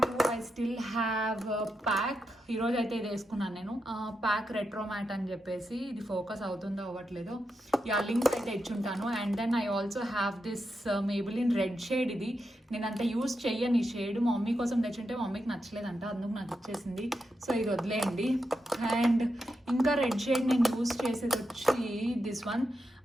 ఐ స్టిల్ హ్యావ్ ప్యాక్. ఈరోజు అయితే ఇది వేసుకున్నాను నేను. ప్యాక్ రెట్రో మ్యాట్ అని చెప్పేసి, ఇది ఫోకస్ అవుతుందో అవ్వట్లేదో, లింక్స్ అయితే ఇచ్చుంటాను. And then I also have this Maybelline red shade. ఇది నేను అంత యూజ్ చెయ్యను ఈ షేడ్. మా మమ్మీ కోసం తెచ్చుంటే మా మమ్మీకి నచ్చలేదంట, అందుకు నాకు ఇచ్చేసింది. సో ఇది వదిలేయండి. అండ్ ఇంకా రెడ్ షేడ్ నేను యూజ్ చేసేది వచ్చి దిస్ వన్.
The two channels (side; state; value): both; normal; correlation 0.86